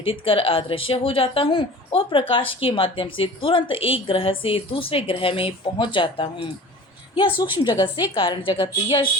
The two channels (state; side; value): normal; both; correlation 0.41